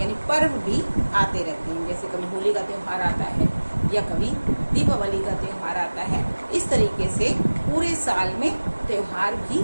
यानी पर्व भी आते रहते हैं। जैसे कभी होली का त्योहार आता है या कभी दीपावली का त्योहार आता है। इस तरीके से पूरे साल में त्योहार भी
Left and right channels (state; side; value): inverted; both; correlation -1.00